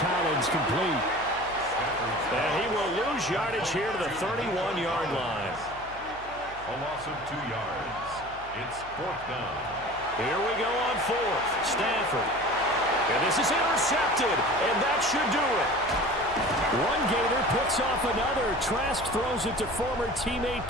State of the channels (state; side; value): noise; left; hum, 19 dB below the sound